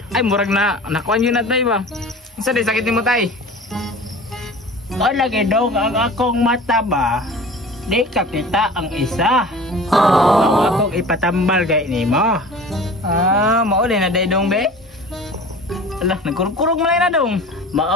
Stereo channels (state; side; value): normal; both; correlation 0.40